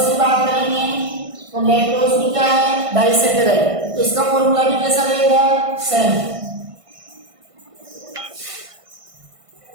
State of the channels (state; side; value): late; left; 1.5 ms